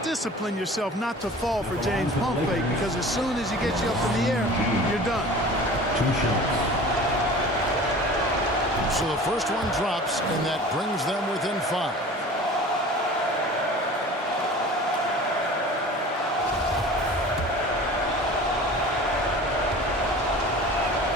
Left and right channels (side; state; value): both; normal; correlation 0.41